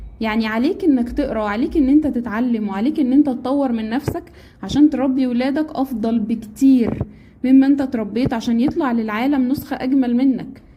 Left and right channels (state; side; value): identical; both; correlation 1.00